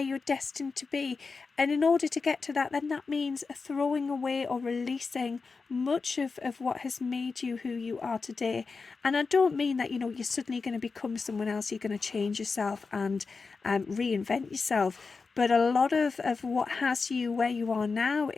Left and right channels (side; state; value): right; quieter; 4.5 dB